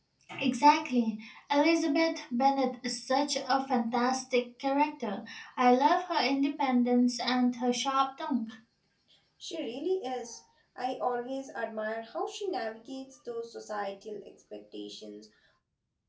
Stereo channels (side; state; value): both; identical; correlation 1.00